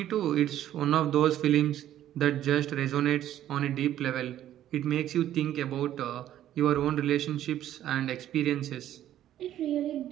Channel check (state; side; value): quieter; left; 12.0 dB